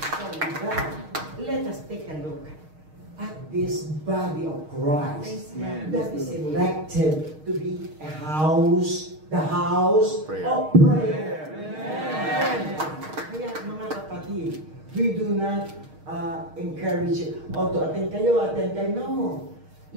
So with that, let us take a look at this body of Christ Amen. that is elected to be a house, the house Prayer. of prayer. Amen. Kaya mga kapatid, we do not encourage you, to attend kayo. No.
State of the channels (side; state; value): left; late; 6.4 ms